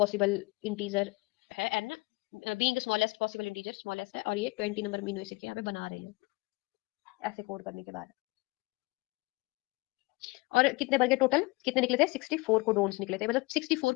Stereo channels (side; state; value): right; quieter; 24.6 dB